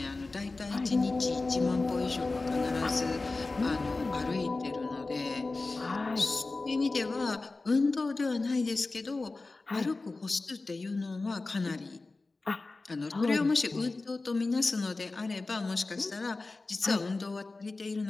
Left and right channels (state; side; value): quieter; right; 3.5 dB